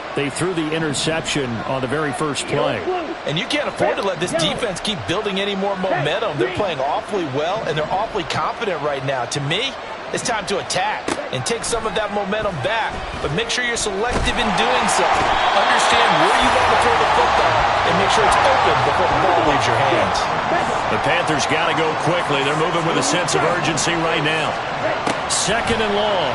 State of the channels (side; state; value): both; identical; correlation 1.00